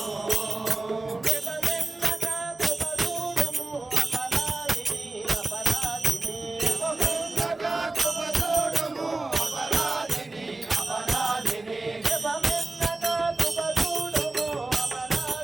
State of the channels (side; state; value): left; quieter; 3.2 dB